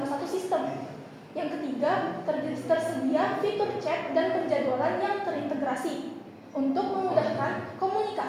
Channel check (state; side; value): identical; both; correlation 1.00